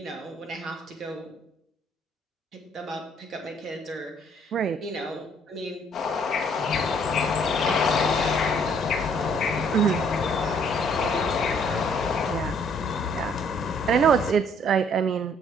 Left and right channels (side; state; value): both; normal; correlation 0.63